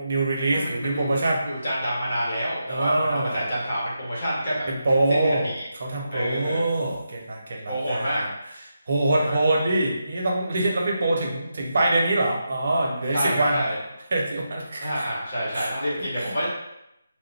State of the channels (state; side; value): inverted; both; correlation -0.86